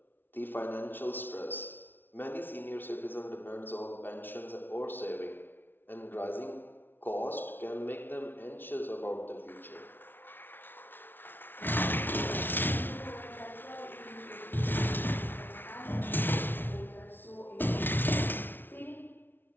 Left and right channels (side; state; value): right; late; 0.098 ms